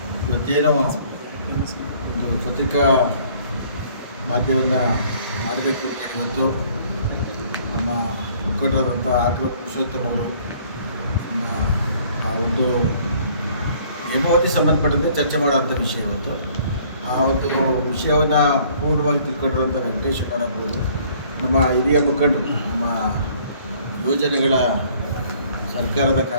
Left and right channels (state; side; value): inverted; both; correlation -0.58